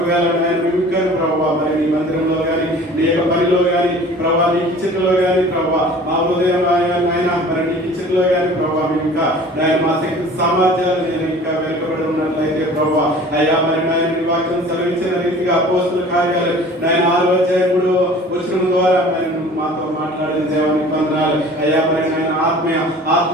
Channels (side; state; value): both; normal; correlation 0.46